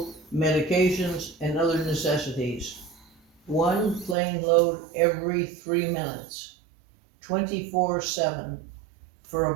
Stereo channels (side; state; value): left; drops out; at 4.2 s